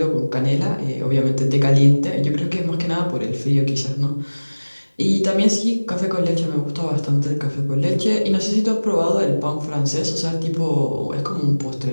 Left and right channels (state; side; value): inverted; both; correlation -1.00